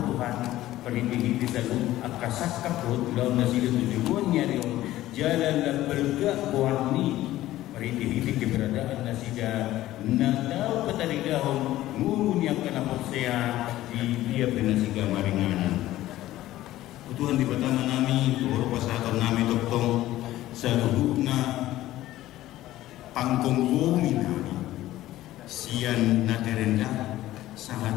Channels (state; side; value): quieter; right; 15.1 dB